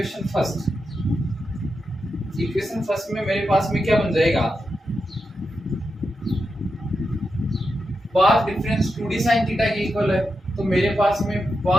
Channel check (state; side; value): normal; both; correlation 0.87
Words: first, equation first में मेरे पास में क्या बन जाएगा, path difference 2d sin theta के इक्वल है। तो मेरे पास में